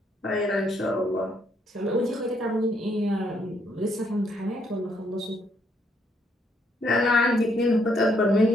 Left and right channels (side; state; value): both; normal; correlation 0.71